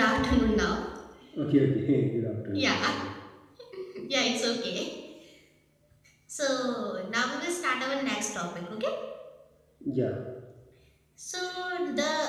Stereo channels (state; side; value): identical; both; correlation 1.00